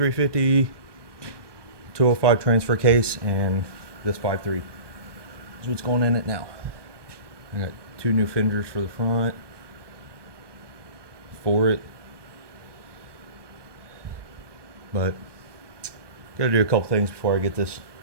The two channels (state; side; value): late; left; 1.2 ms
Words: 205 transfer case, and this 5.3. That's what's going in it now. I got 2 new fenders for the front for it. But gotta do a couple things before I get this